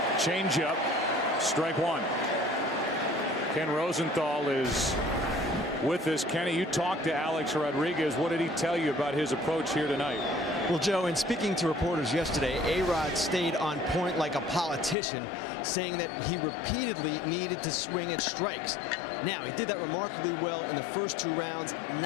Changeup, strike 1. Ken Rosenthal is with us. Kenny, you talked to Alex Rodriguez. What did he tell you about his approach here tonight? Well, Joe, in speaking to reporters yesterday, A-Rod stayed on point like a politician, saying that he repeatedly needed to swing at strikes. Now, he did that remarkably well in the first 2 rounds,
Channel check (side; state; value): right; drops out; at 15.0 s